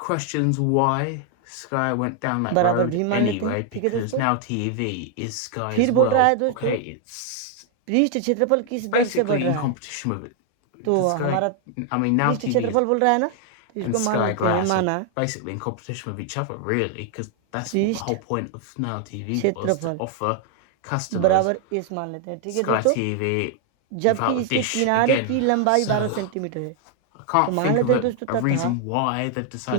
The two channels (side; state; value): both; different; correlation 0.00